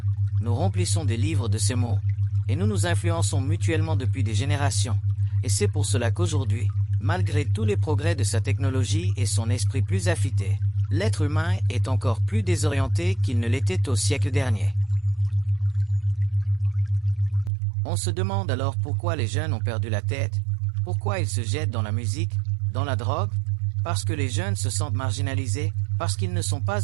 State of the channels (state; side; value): drops out; left; at 17.5 s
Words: nous remplissons des livres de ces mots, et nous nous influençons mutuellement depuis des générations. Et c'est pour cela qu'aujourd'hui, malgré tous les progrès de sa technologie et son esprit plus affûté, l'être humain est encore plus désorienté qu'il ne l'était au siècle dernier. On se demande alors pourquoi les jeunes ont perdu la tête, pourquoi ils se jettent dans la musique, dans la drogue, parce que les jeunes se sentent marginalisés, parce qu'ils ne sont pas